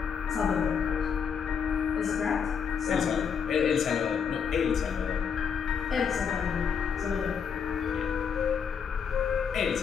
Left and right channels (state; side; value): quieter; right; 6.8 dB